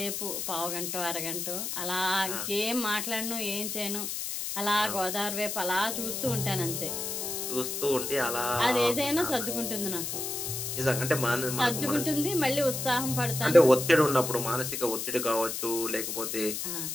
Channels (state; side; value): noise; left; hiss, 3 dB below the sound